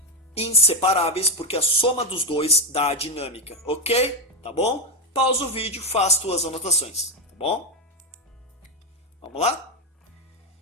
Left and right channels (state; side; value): normal; both; correlation 0.09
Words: inseparáveis, porque a soma dos dois dá a dinâmica, ok? Tá bom? Pausa o vídeo, faz tuas anotações, tá bom? Vamos lá?